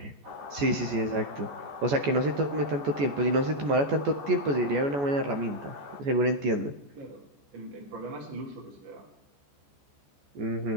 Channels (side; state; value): left; late; 14 ms